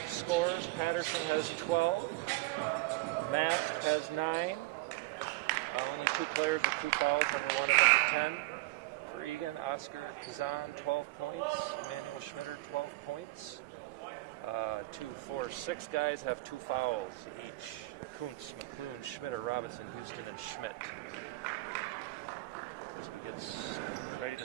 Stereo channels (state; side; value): quieter; left; 21.1 dB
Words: Scores, Patterson has 12. Mast has 9. Only 2 players with 2 fouls, number 1 and number 10. For Eagan, Oscar Kazan, 12 points. Emmanuel Schmitter, 12 points. 2, 4, 6 guys have 2 fouls each. Kuntz, McClune, Schmitter, Robinson, Houston, and Schmidt. As we get ready to